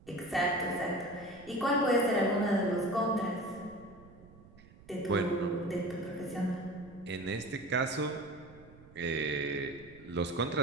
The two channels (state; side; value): noise; right; rumble, 22 dB below the sound